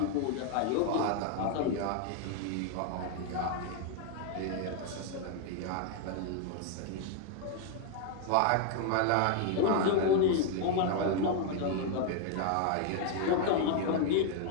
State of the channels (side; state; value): both; different; correlation 0.00